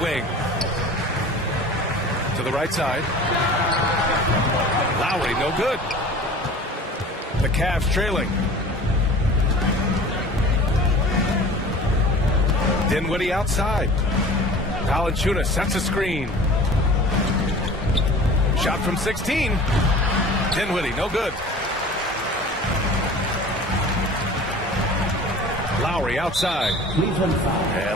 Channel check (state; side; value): normal; both; correlation 0.42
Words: To the right side. Lowry, no good. The Cavs trailing. Dinwiddie outside. Valanciunas sets a screen. Shot from 16. Dinwiddie, no good. Lowry outside.